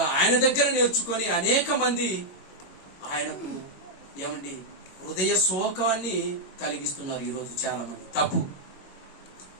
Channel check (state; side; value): late; right; 21 ms